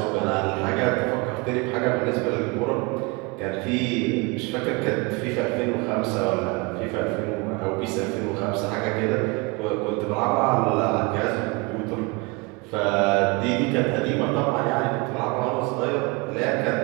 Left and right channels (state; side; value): quieter; left; 27.7 dB